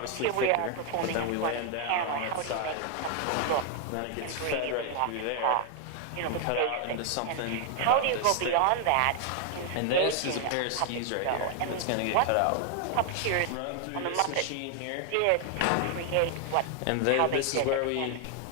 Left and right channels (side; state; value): both; different; correlation 0.00